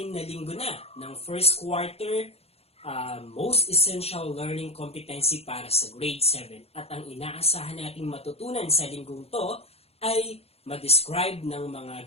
na linggo na ng first quarter most essential learning competency para sa grade 7. At ang inaasahan nating matutunan sa linggong to ay ma-describe ng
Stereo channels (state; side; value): late; right; 0.29 ms